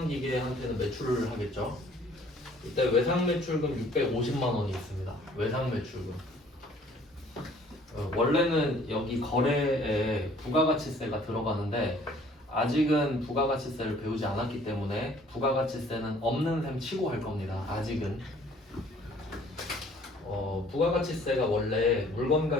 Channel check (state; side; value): normal; both; correlation 0.56